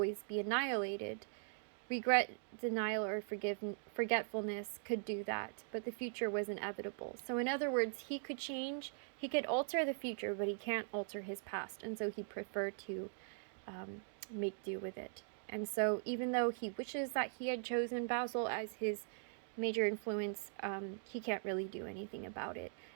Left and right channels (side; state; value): left; silent; digital silence